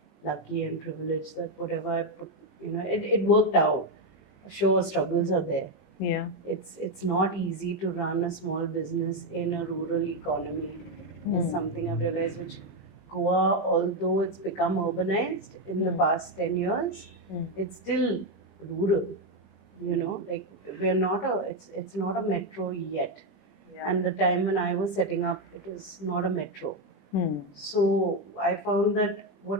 lucky and privileged that whatever I put, it worked out. Sure, struggles are there. Yeah. It's not easy to run a small business in a rural economy. Is something I've realized. Which Goa, although it's become urbanized in the past 10 years, it's still rural. Like we're not it's not a metro yet. Yeah. And the time when I was setting up, it was not a metro. So I found that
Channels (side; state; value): right; late; 20 ms